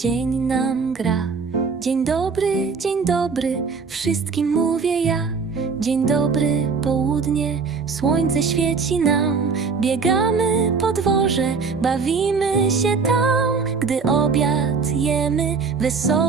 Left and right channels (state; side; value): quieter; left; 5.1 dB